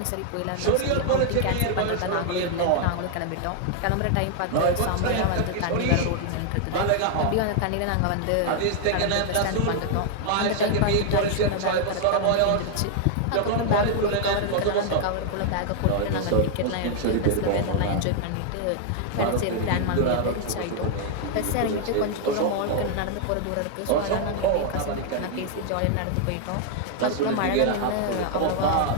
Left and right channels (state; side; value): different; both; correlation 0.00